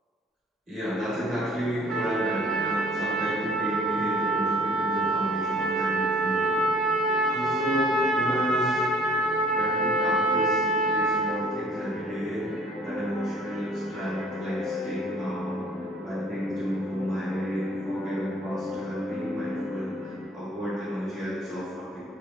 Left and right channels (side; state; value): both; normal; correlation 0.55